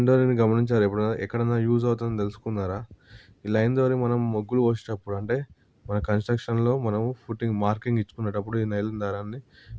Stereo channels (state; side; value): identical; both; correlation 1.00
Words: డోరీని గమనించారా ఎప్పుడైనా? ఎక్కడన్నా యూజ్ అవుతుందని తెలుసుకున్నారా? ఈ లైన్ డోరీ మనం ముగ్గులు పోసేటప్పుడు అంటే మన కన్‌స్ట్రక్షన్‌లో మనం ఫుటింగ్ మార్కింగ్ ఇచ్చుకునేటప్పుడు ఈ నైలాన్ దారాన్ని